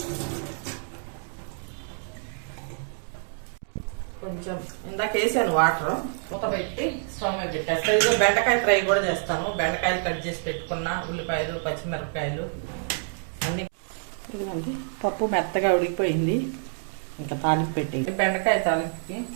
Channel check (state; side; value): silent; left; 60 dB below the other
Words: కొంచెం ఇందాక వేసాను వాటర్, మూత పెట్టి స్టవ్ మీద పెట్టేస్తాను. ఇదిగో బెండకాయ ఫ్రై కూడా చేస్తాను. బెండకాయలు కట్ చేసి పెట్టుకున్న, ఉల్లిపాయలు, పచ్చిమిరపకాయలు అన్నీ. ఇదిగోండి పప్పు మెత్తగా ఉడికిపోయింది. ఇంకా తాలింపు పెట్టేది. బెండకాయ తాలింపుకి